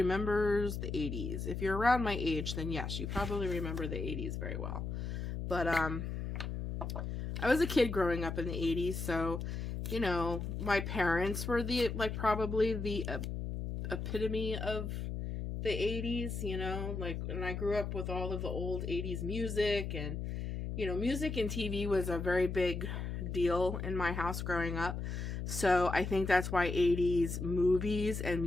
the 80s? If you're around my age, then yes, you probably remember the 80s very well. But I was a kid growing up in the 80s, so my parents were probably the epitome of the 80s, and I grew up with all of the old 80s music, and, music and TV was a very big deal in my house growing up. So I think that's why 80s movies and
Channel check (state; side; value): noise; left; hum, 4 dB below the sound